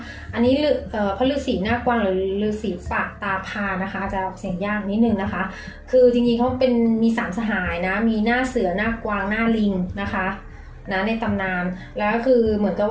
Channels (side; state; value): both; identical; correlation 1.00